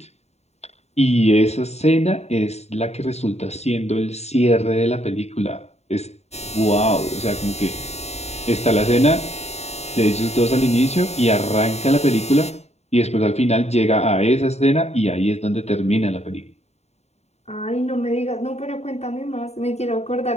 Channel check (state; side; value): late; right; 0.32 ms